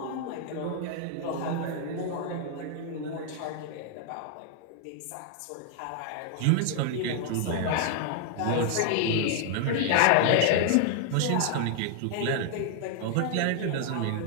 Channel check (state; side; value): different; both; correlation 0.00